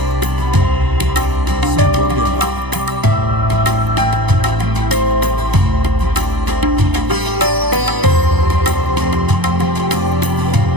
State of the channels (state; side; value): late; left; 1.0 ms